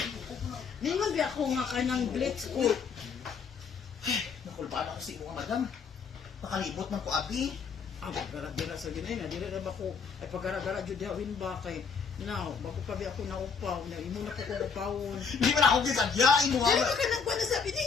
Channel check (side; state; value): right; quieter; 5.8 dB